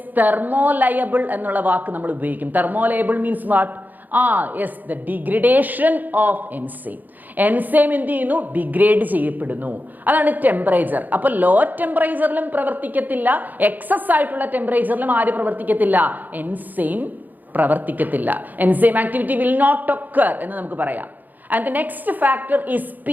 തെർമോലയബിൾ എന്നുള്ള വാക്ക് നമ്മൾ ഉപയോഗിക്കും. Thermolabile means what? Yes, the degradation of enzyme. Enzyme എന്ത് ചെയ്യുന്നു? ഡിഗ്രേഡ് ചെയ്യപ്പെടുന്നു. അതാണ് ടെമ്പറേച്ചർ. അപ്പൊ ലോ ടെമ്പറേച്ചറിലും പ്രവർത്തിക്കത്തില്ല, എക്സസ് ആയിട്ടുള്ള ടെമ്പറേച്ചറിലും ആര് പ്രവർത്തിക്കത്തില്ല? എൻസൈം പ്രവർത്തിക്കത്തില്ല. Enzyme activity will not occur എന്ന് നമുക്ക് പറയാം. And the next factor is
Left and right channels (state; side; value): late; left; 0.084 ms